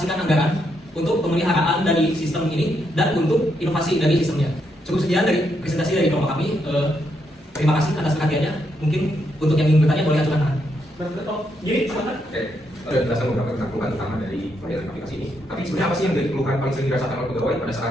anggaran untuk pemeliharaan dari sistem ini dan untuk inovasi dari sistemnya. Cukup sekian dari presentasi dari kelompok kami. Terima kasih atas perhatiannya. Mungkin untuk yang ingin bertanya boleh ajukan tangan. Jadi, silakan. Oke, ada penjelasan beberapa tentang keluhan utama dari pelayanan aplikasi ini. Tapi sebenarnya apa sih yang menjadi keluhan paling sering dirasakan oleh pegawai pada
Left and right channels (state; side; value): normal; both; correlation 0.78